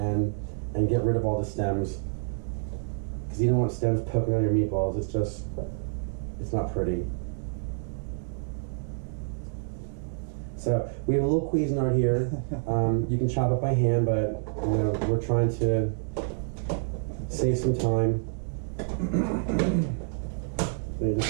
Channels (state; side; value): silent; left; digital silence